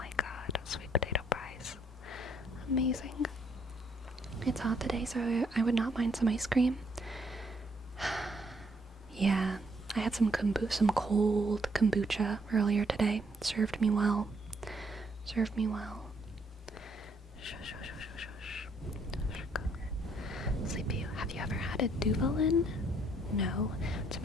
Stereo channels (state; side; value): normal; both; correlation 0.69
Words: god, sweet potato fries. Amazing. It's hot today, so I would not mind some ice cream. Yeah, I had some cold kombucha earlier today. Served me well. Sleepy, have you ever had a Duvalin? No. It's a